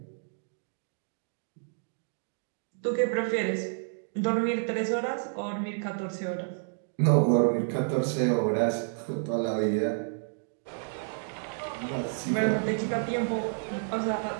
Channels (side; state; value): left; silent; digital silence